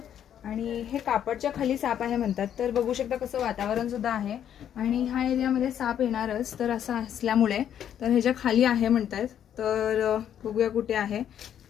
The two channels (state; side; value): quieter; right; 9.7 dB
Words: आणि हे कापडच्या खाली साप आहे म्हणतात. तर बघू शकता कसं वातावरण सुद्धा आहे आणि ह्या एरियामध्ये साप येणारच. तर असं असल्यामुळे तर ह्याच्या खाली आहे म्हणतात. तर बघूया कुठे आहे.